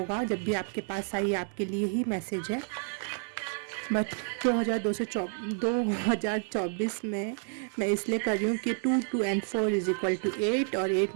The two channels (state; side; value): silent; left; 58 dB below the other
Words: जब भी आपके पास आई आपके लिए ही मैसेज है। बट 2024 में मैं इसलिए कर रही हूँ कि 2 2 and 4 इज इक्वल टू 8, और 8